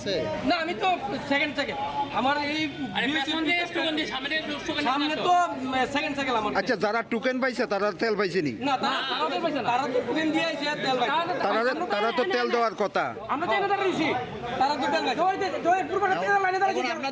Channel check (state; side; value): identical; both; correlation 1.00